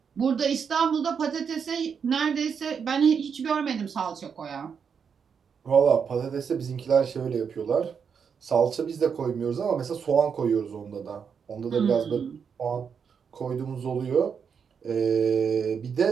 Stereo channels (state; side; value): quieter; left; 6.6 dB